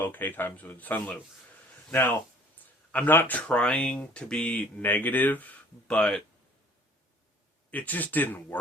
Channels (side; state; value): both; normal; correlation 0.53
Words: times with Sunlu. Now, I'm not trying to be negative, but it just didn't